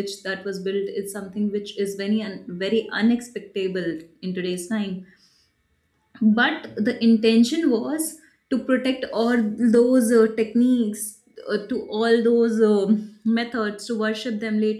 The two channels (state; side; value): identical; both; correlation 1.00